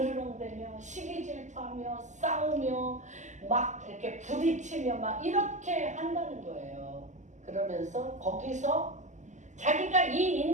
시기 질투하며 싸우며 막 이렇게 부딪히며 막 이렇게 한다는 거예요. 그러면서 거기서 자기가 이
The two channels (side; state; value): left; late; 0.34 ms